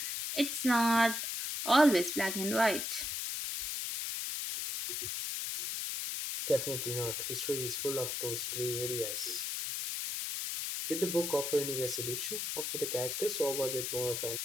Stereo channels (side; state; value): left; noise; hiss, 2 dB below the sound